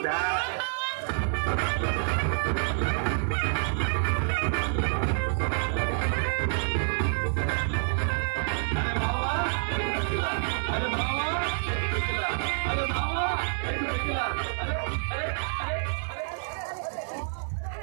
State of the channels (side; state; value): left; silent; digital silence